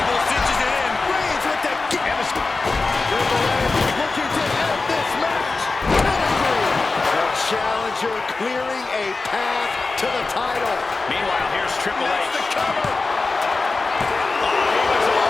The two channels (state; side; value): quieter; right; 3.8 dB